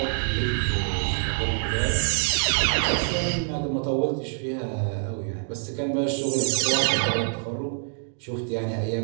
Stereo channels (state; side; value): silent; left; digital silence